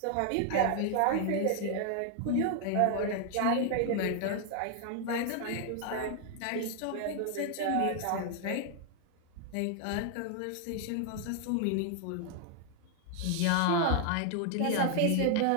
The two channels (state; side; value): different; both; correlation 0.00